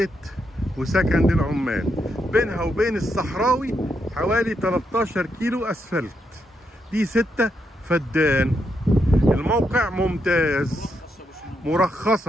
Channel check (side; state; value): both; normal; correlation 0.80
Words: وسكن للعمال. بينها وبين الصحراوي حوالي 13 كيلو اسفلت. دي 6 فدان. الموقع ممتاز،